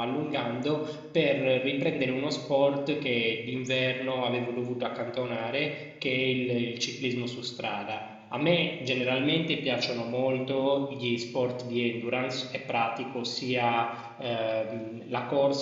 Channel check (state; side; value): identical; both; correlation 1.00